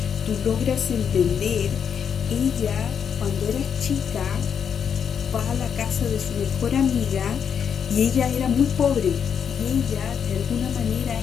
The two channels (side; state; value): right; quieter; 7.5 dB